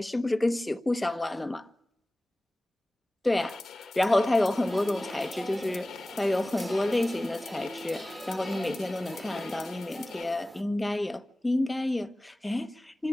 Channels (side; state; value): both; normal; correlation 0.98